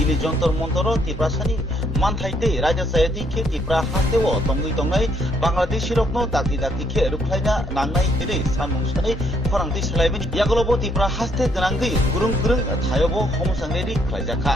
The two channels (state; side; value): normal; both; correlation 0.70